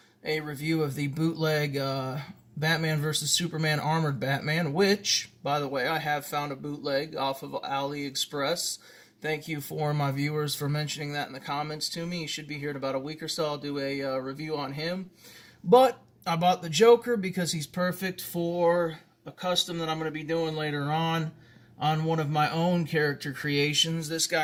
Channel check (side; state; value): both; identical; correlation 1.00